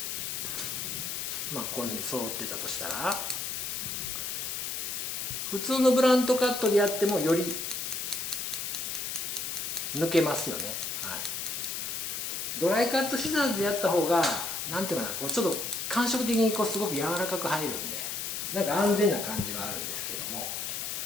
まあこういうふうに揃ってたとしたら、普通のブラントカットでやってもより抜けますよね。はい、ドライカットシザーズでやった方がなんていうかな、こうちょっと感触的にこうすごく柔らかく入るんで、なんか安全な感じはあるんですけども、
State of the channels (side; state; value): left; noise; hiss, 3 dB below the sound